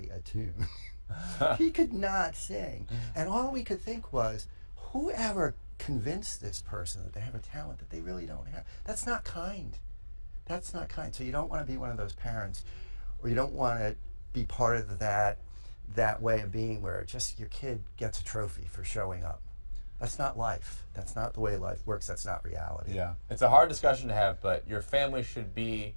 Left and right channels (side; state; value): both; inverted; correlation -1.00